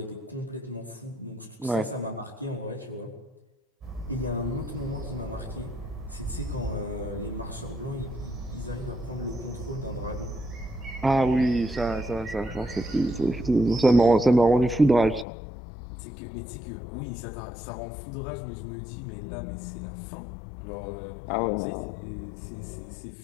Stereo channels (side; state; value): right; drops out; at 15.2 s